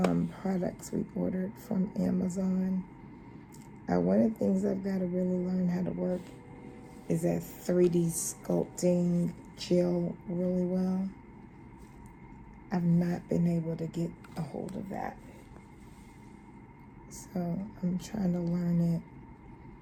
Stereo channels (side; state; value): both; identical; correlation 1.00